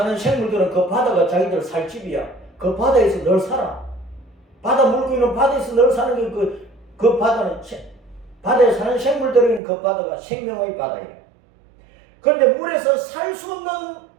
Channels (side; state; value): left; drops out; at 9.6 s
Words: 생물들은 그 바다가 자기들 살 집이야. 그 바다에서 늘 살아. 바다 물고기는 바다에서 늘 사는 게 그 바다는 바다에 사는 생물들은 그 바다가 생명의 바다예요. 그런데 물에서 살 수 없는